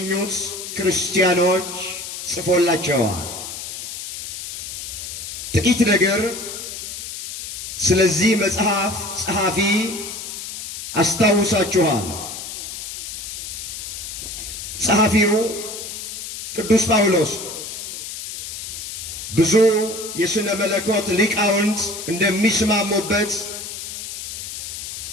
ክርስቲያኖች ጽፎላቸዋል። ጥቂት ነገር ስለዚህ መጽሐፍ ጸሐፊ አስታውሳችኋል። ጸሐፊው ቅዱስ ጳውሎስ ብዙ የሥነ መለኮት ሊቃውንት እንደሚስማሙበት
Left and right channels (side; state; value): left; noise; hiss, 8 dB below the sound